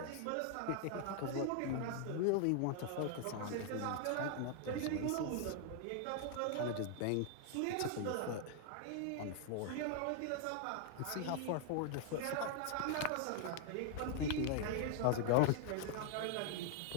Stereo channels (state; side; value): different; both; correlation 0.00